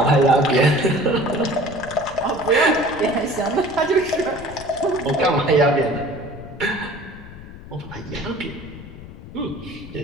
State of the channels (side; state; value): left; noise; rumble, 15 dB below the sound